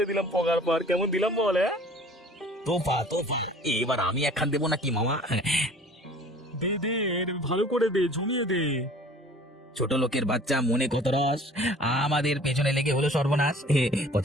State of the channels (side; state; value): both; normal; correlation 0.48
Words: দিলাম পগার পার, কেমন দিলাম বল? তোফা তোফা, এবার আমি একখান দেবো নাকি মামা? দে দে, ভালো করে দে, জমিয়ে দে। ছোট লোকের বাচ্চা মনে কত রস, আমাদের পেছনে লেগে হলো সর্বনাশ।